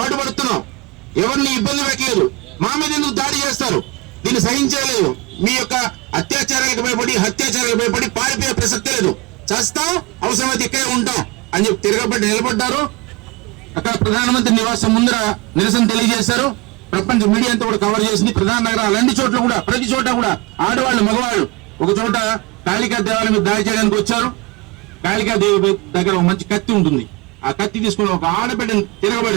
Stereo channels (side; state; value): left; quieter; 24.9 dB